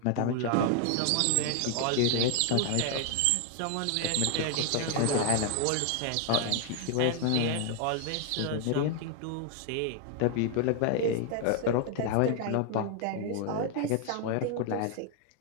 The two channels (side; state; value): both; different; correlation 0.00